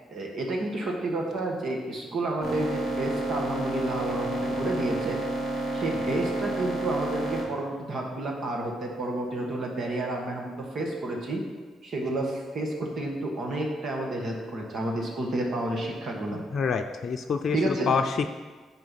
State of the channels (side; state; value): both; normal; correlation 0.73